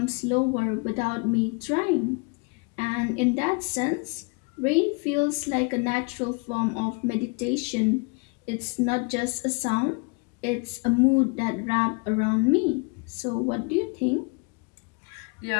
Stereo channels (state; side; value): quieter; right; 31.6 dB